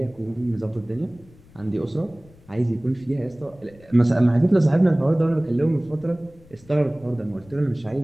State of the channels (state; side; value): noise; left; rumble, 25 dB below the sound